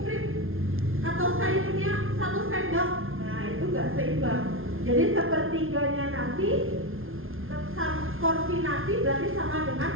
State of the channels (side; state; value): left; late; 0.61 ms